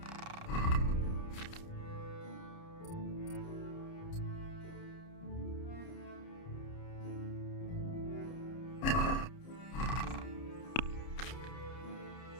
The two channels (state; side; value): late; right; 29 ms